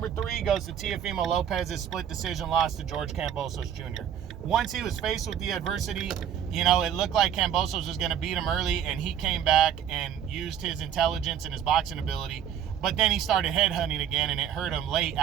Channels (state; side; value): quieter; left; 9.3 dB